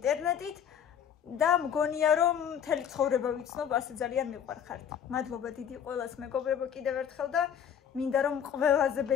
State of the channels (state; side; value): quieter; right; 8.5 dB